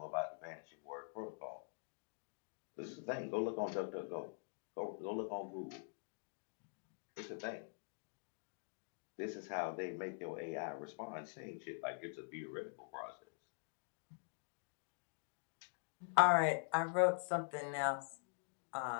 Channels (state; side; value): silent; right; digital silence